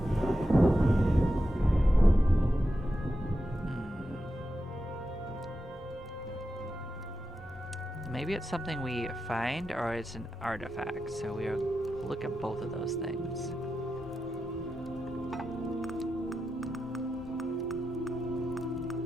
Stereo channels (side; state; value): both; normal; correlation 0.89